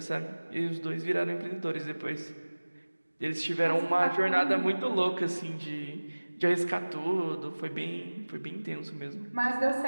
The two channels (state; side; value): inverted; both; correlation -1.00